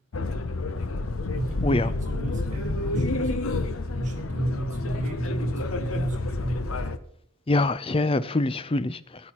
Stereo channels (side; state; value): both; normal; correlation 0.66